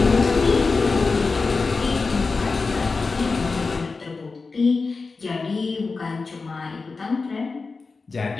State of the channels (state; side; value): quieter; right; 4.2 dB